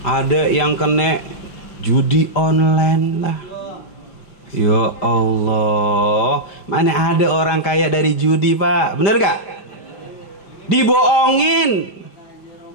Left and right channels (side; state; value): right; late; 5.0 ms